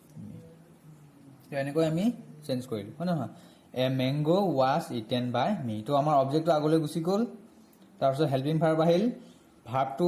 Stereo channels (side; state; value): both; identical; correlation 1.00